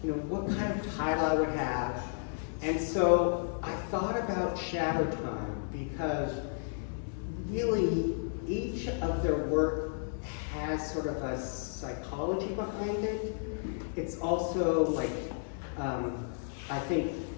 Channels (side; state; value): right; silent; 56 dB below the other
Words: what kind of title I would have. And so I thought about Shadow Time, because really each of their work has sort of a psychology behind it. It's also like, I think